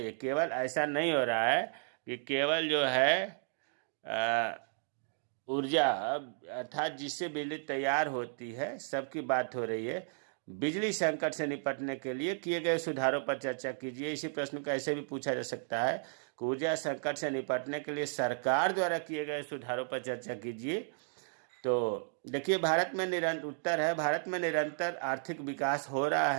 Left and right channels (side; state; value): left; silent; digital silence